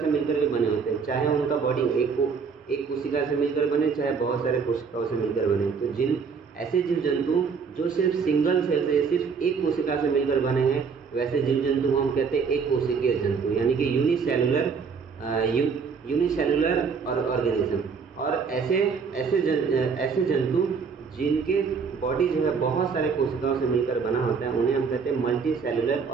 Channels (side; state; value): left; quieter; 5.7 dB